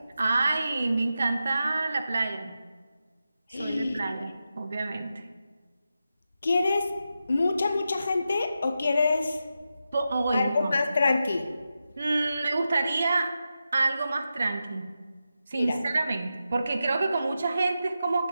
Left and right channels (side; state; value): both; inverted; correlation -0.89